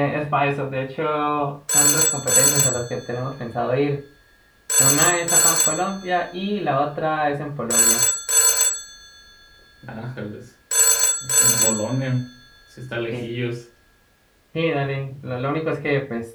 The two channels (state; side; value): identical; both; correlation 1.00